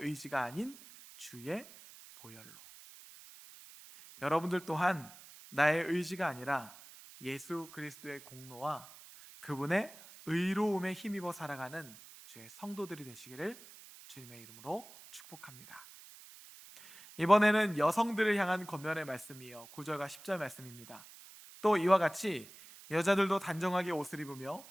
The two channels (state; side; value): noise; right; hiss, 19 dB below the sound